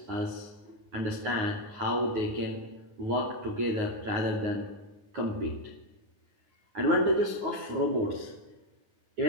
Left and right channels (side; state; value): left; late; 9.4 ms